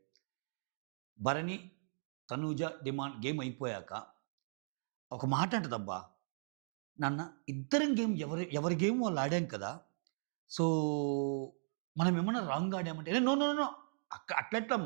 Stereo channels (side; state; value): left; silent; digital silence